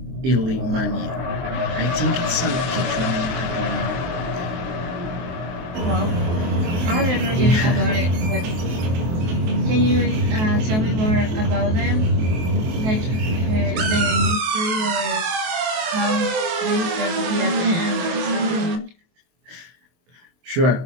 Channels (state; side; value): late; left; 23 ms